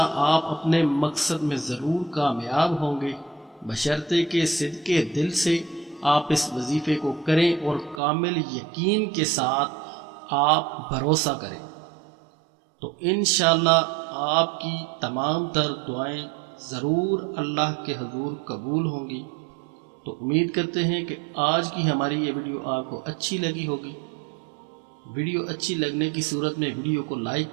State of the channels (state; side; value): drops out; left; at 8.0 s